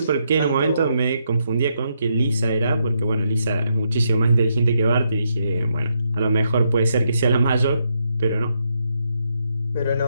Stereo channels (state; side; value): inverted; both; correlation -0.79